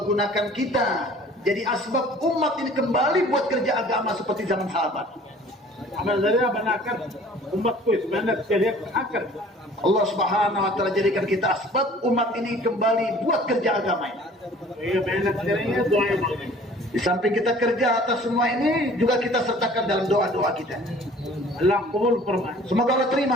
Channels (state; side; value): normal; both; correlation 0.50